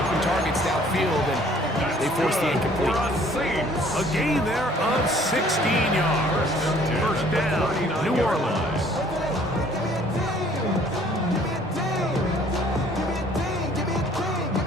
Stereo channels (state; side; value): normal; both; correlation 0.57